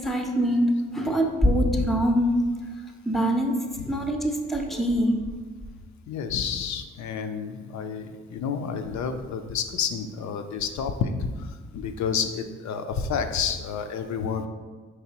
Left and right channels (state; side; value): normal; both; correlation 0.56